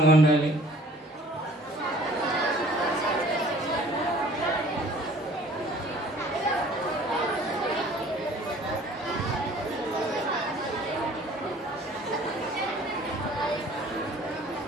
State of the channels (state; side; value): normal; both; correlation 0.52